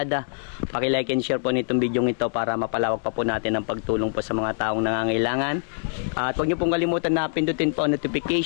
Paki-like and share po nitong video ito para mapalawak pa po natin ang pagtulong po sa mga taong nangangailangan. At huwag niyo pong kalimutan na pindutin po ang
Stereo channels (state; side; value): silent; right; digital silence